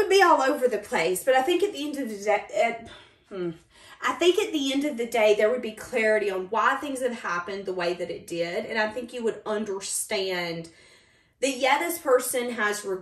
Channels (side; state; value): both; identical; correlation 1.00